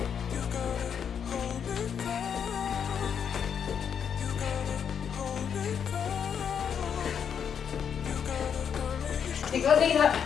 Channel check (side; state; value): right; quieter; 7.6 dB